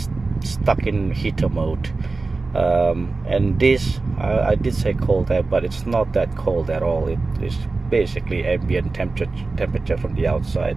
stuck in heater mode. And this, I did say cold air, but it's not that cold at all. It is basically ambient temperature from the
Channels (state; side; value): quieter; left; 3.7 dB